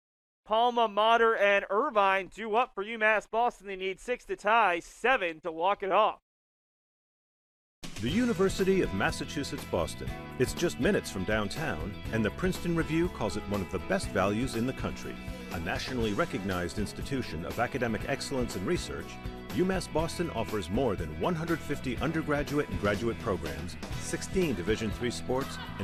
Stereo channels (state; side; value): identical; both; correlation 1.00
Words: Palma, Motter, and Irvine due up for UMass Boston. They need 6 to tie, 7 to walk it off. The University of Massachusetts Boston. It's just minutes from downtown, and the Princeton Review calls it one of the best values in the country. A nationally recognized institution of academic excellence and research, UMass Boston offers more than 150 undergraduate and graduate programs, 16 Division III sports,